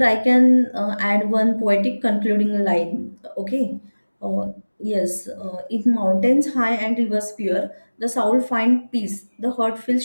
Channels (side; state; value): both; inverted; correlation -1.00